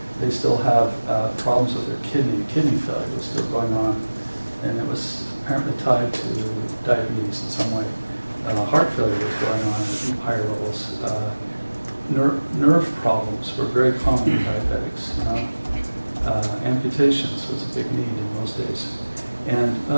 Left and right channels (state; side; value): inverted; both; correlation -1.00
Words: They still have problems with their kidney. Kidney failure was still going on, and it was apparently tied to diabetes in some way. Heart failure was going on at higher levels. Nerve problems were very common in diabetics. You know? Amputations was a big need in those days. And